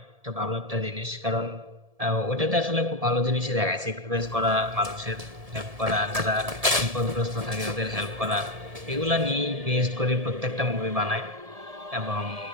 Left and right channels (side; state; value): left; late; 1.7 ms